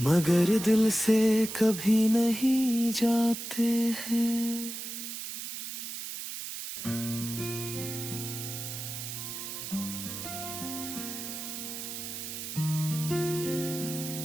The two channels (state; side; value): noise; right; hiss, 7 dB below the sound